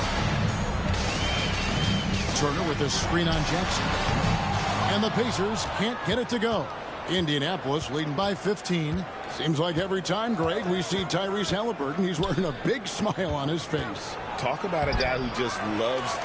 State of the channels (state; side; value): identical; both; correlation 1.00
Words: Turner with a screen on Jackson. And the Pacers can't get it to go. Indianapolis leading by 15. Seems like every time, Greg, we see Tyrese Halliburton, he's wearing a big smile on his face. Talk about a guy who just loves